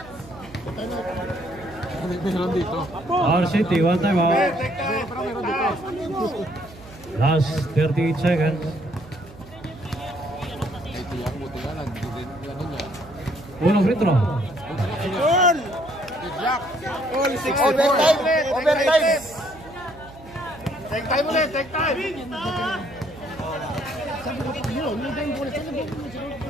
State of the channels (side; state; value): right; noise; hum, 20 dB below the sound